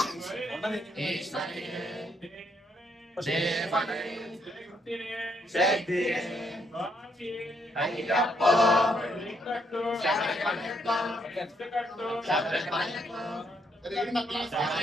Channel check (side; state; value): both; normal; correlation 0.74